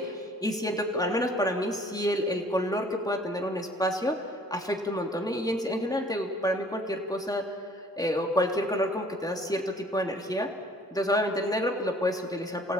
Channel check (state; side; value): normal; both; correlation 0.55